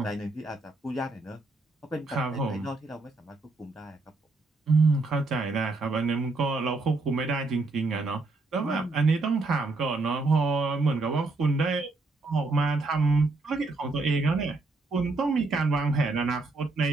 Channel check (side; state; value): left; quieter; 3.4 dB